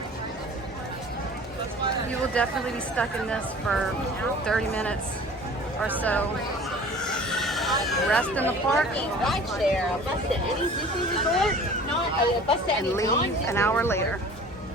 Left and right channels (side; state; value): both; normal; correlation 0.45